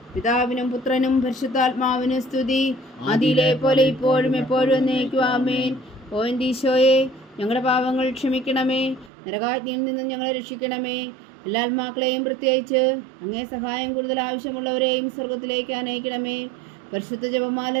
പിതാവിനും പുത്രനും പരിശുദ്ധാത്മാവിനും സ്തുതി, ആദിയിലെ പോലെ ഇപ്പോഴും എപ്പോഴും എന്നേക്കും. ആമേൻ. ഓ എൻ്റെ ഈശോയെ, ഞങ്ങളുടെ പാപങ്ങൾ ക്ഷമിക്കണമേ, നരകാഗ്നിയിൽ നിന്നും ഞങ്ങളെ രക്ഷിക്കണമേ. എല്ലാ ആത്മാക്കളെയും പ്രത്യേകിച്ച് അങ്ങേ സഹായം കൂടുതൽ ആവശ്യമുള്ളവരെയും സ്വർഗത്തിലേക്ക് അനയിക്കണമേ. പരിശുദ്ധ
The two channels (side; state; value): left; drops out; at 9.1 s